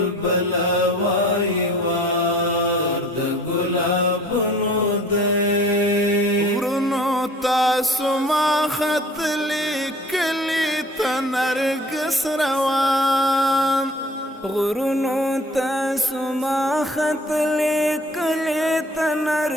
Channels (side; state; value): both; normal; correlation 0.50